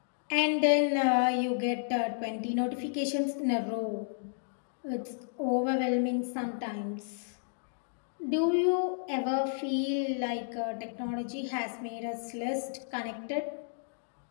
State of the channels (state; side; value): silent; right; digital silence